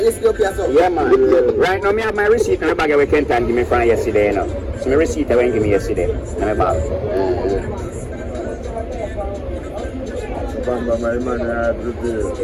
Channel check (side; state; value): both; identical; correlation 1.00